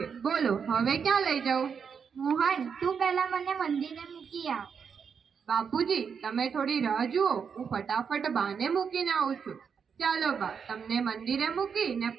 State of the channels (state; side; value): quieter; left; 6.6 dB